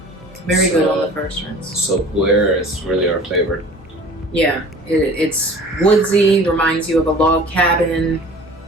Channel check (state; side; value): normal; both; correlation 0.45